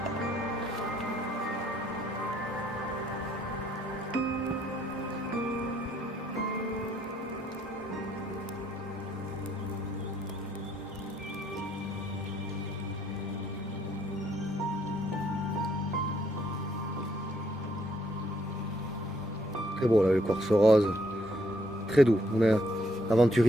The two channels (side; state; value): both; normal; correlation 0.70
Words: Très beau là, le quartz rose. Très doux. On a